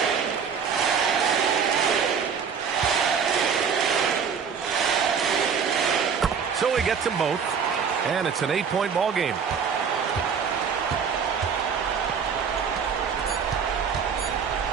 So he gets them both, and it's an 8-point ball game.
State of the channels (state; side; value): quieter; left; 6.6 dB